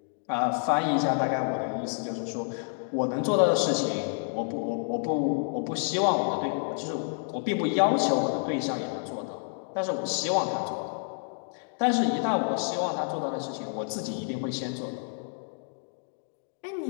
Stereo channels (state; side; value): silent; right; 59 dB below the other